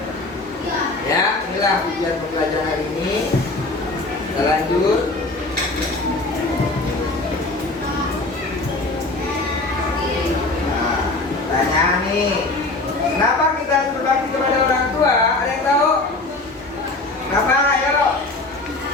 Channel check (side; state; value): right; quieter; 3.1 dB